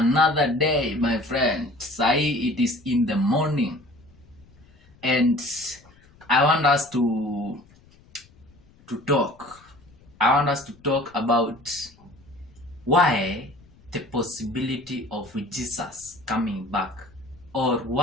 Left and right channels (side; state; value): left; noise; rumble, 28 dB below the sound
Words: day, my friend. Sai, it is in the morning, and I want us to talk. I want us to talk about why the possibility of Jesus coming back, or